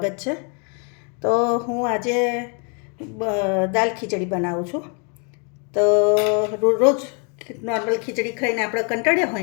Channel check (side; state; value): right; quieter; 37.4 dB